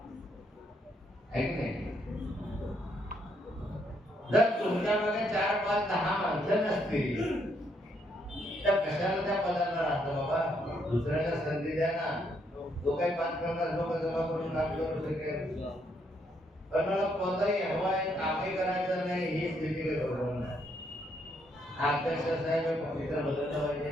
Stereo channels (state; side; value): normal; both; correlation 0.73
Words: आहे की नाही. जर तुमच्या मागे 4, 5, 10 माणसं नसतील तर कशाला त्या पदाला राहतं बाबा? दुसऱ्याला संधी द्या ना. जो काही 5-50 लोक जमा करून काम करू शकेल. पण मला कोणताही हवाय कामही करायचं नाही ही स्थिती बरोबर नाही. अध्यक्ष साहेब पवित्र बदललं पाहिजे.